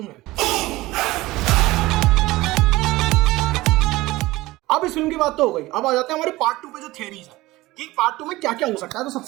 में। अब इस फिल्म की बात तो हो गई, अब आ जाते हैं हमारे पार्ट 2 पे जो थियरीज है कि पार्ट 2 में क्या क्या हो सकता है। तो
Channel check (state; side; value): quieter; left; 19.1 dB